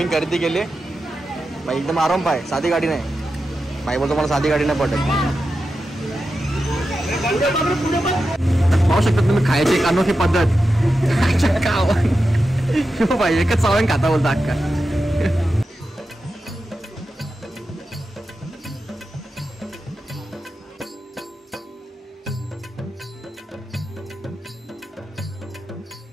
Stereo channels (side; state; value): both; normal; correlation 0.90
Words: खरेदी केली बाई. एकदम आराम पाय, साधी गाडी नाही बाई. बोलतो मला साधी गाडी नाही पडत. पाहू शकता तुम्ही खायची एक अनोखी पद्धत. बाई एकच चावण खाता बोलता अक्का.